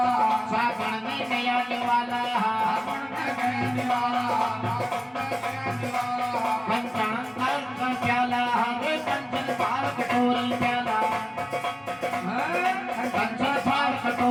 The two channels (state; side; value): identical; both; correlation 1.00